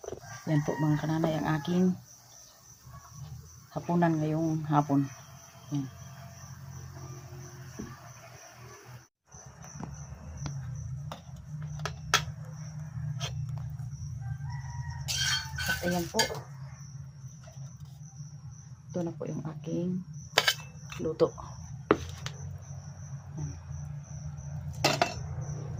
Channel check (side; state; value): both; identical; correlation 1.00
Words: Yan po mga kananay ang aking hapunan ngayong hapon. Yan. At ayan po. Ito na po yung aking luto. Yan.